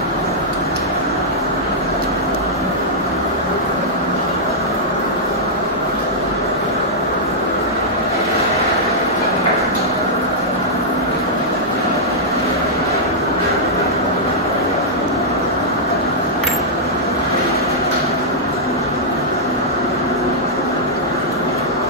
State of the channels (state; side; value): normal; both; correlation -0.08